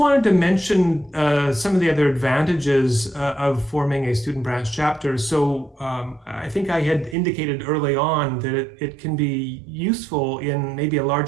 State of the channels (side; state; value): left; drops out; at 7.2 s